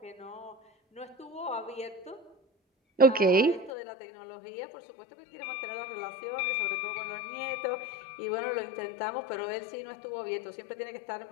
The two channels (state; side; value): drops out; right; at 3.7 s